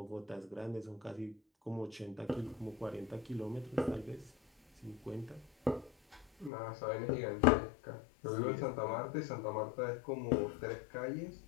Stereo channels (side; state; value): right; drops out; at 6.5 s